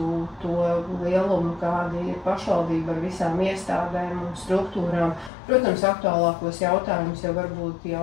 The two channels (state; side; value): drops out; right; at 5.3 s